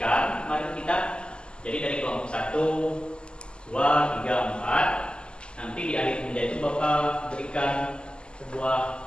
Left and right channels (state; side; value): late; right; 0.049 ms